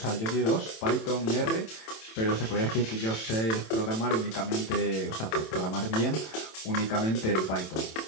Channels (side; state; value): right; late; 27 ms